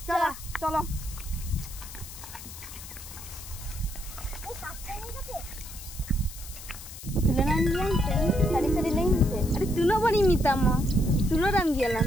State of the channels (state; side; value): noise; left; hiss, 14 dB below the sound